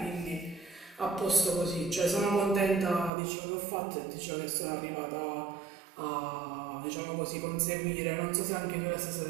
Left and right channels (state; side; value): drops out; left; at 3.1 s